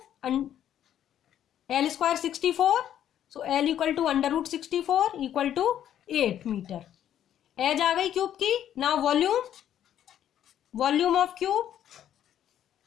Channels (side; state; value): right; quieter; 10.6 dB